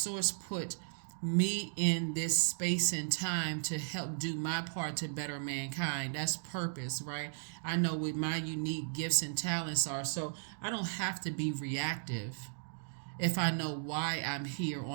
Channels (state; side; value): silent; left; digital silence